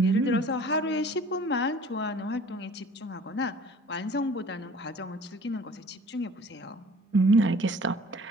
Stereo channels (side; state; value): both; normal; correlation 0.49